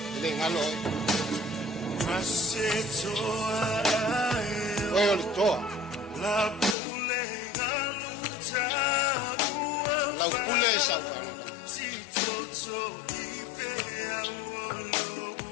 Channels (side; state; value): right; drops out; at 6.8 s